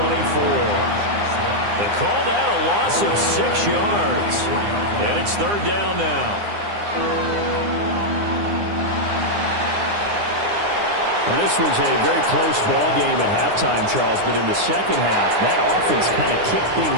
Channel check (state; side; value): late; left; 9.8 ms